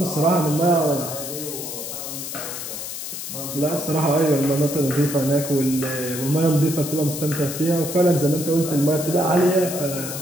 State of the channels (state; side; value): noise; left; hiss, 7 dB below the sound